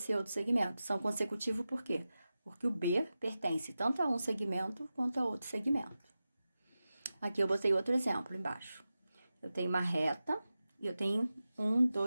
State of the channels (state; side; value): inverted; both; correlation -0.93